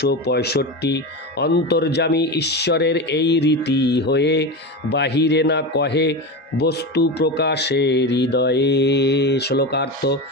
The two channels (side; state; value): both; normal; correlation 0.22